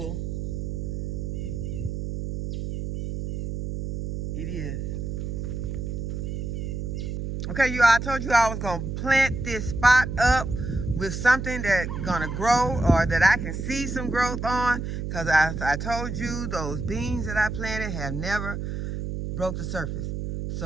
it is. Okay, you all, I told you I was going to plant this spot up with something that's going to grow or that I can see some growth on, because I told you those beans that I planted have never broke the surface.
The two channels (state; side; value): noise; right; hum, 4 dB below the sound